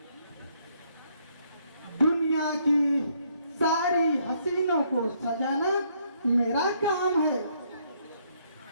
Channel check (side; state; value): both; inverted; correlation -0.70